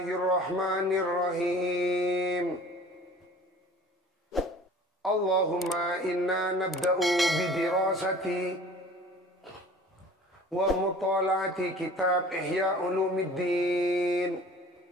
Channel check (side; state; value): both; normal; correlation 0.45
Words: Allahumma inna nabda'u bidirasati wa mutala'ati kitab Ihya Ulumuddin.